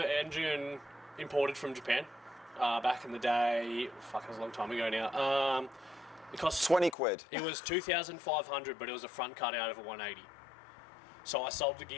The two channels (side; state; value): right; drops out; at 7.0 s